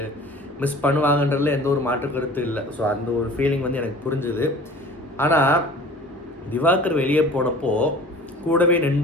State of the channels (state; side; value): normal; both; correlation 0.44